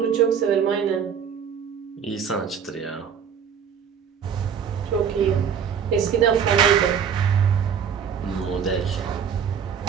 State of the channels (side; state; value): left; quieter; 7.5 dB